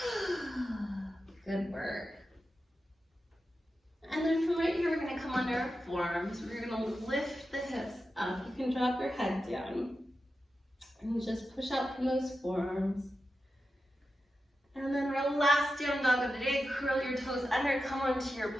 Good work. And then from right here, we're going to come under our forearms. We're going to lift the hips up. You can drop your head down. And just push out from those forearms. And then our last down dog of the day, curl your toes under, come onto your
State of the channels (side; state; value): both; normal; correlation 0.90